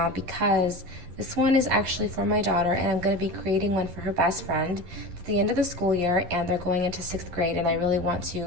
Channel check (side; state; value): left; late; 11 ms